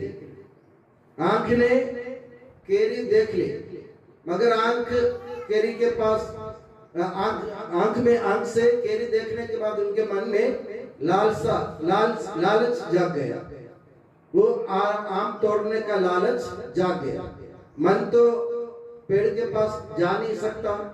आंख ने केरी देख ली, मगर आंख केरी के पास आंख से केरी देखने के बाद उनके मन में लालच जाग गया। वो आम तोड़ने का लालच जाग गया। मन तो पेड़ के पास जा नहीं सकता,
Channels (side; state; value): both; identical; correlation 1.00